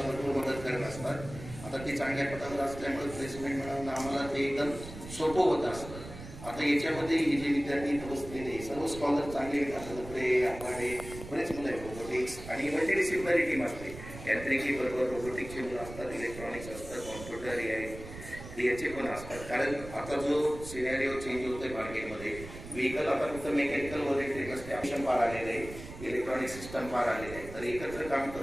भरपूर मदत करत असतात. आता ते चांगल्या पदावर असल्यामुळे प्लेसमेंट मिळवणं आम्हाला ते एकदम सोपं होत असतं. आता याच्यामध्ये हे जे विद्यार्थी बसलेले सर्व स्कॉलर चांगले पुढे आपल्याकडे बरेच मुलं आहेत. रोबोटिक्स आणि मल्टीडिसिप्लिनरी टीम असते. यांत्रिकी बरोबर रोबोटिक्सचे मुलं असतात, इलेक्ट्रॉनिक्स असतात, कॉम्प्युटर याचे पण असतात. कारण आता जो सिनेरिओ चेंज होतोय मार्केटमध्ये, व्हेकल आता फक्त मेकॅनिकल व इलेक्ट्रिक असते, ऑप्शन पार आलेले आहे, इलेक्ट्रॉनिक सिस्टम पार आलेले आहे. तर एकत्र काम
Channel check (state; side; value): noise; right; rumble, 13 dB below the sound